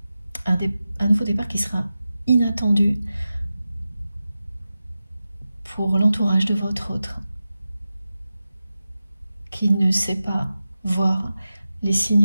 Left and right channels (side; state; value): both; inverted; correlation -0.93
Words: Un nouveau départ qui sera inattendu pour l'entourage de votre autre, qui ne sait pas voir les